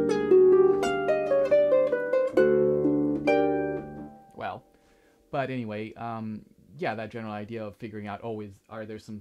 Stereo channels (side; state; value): both; identical; correlation 1.00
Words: But anyway, yeah, that general idea of figuring out, are there some